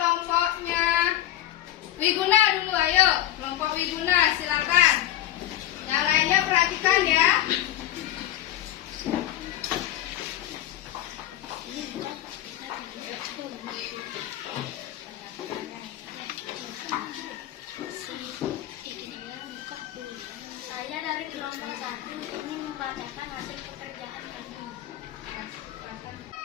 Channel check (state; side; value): quieter; right; 13.1 dB